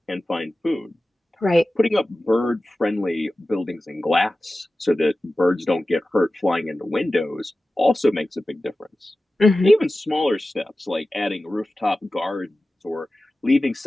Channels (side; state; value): both; normal; correlation 0.95